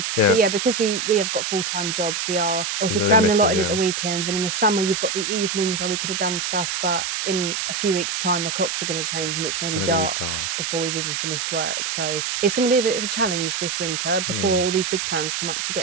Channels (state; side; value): noise; right; hiss, 2 dB below the sound